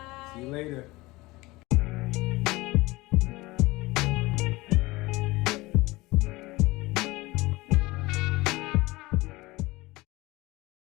See you later.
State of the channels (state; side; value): quieter; right; 21.3 dB